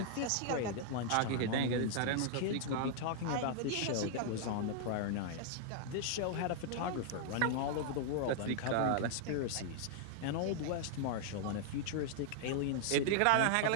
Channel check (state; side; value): different; both; correlation 0.00